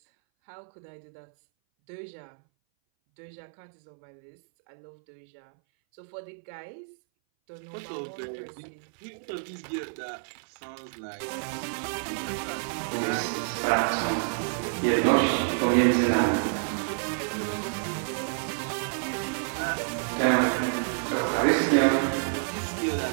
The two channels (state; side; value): silent; left; 59 dB below the other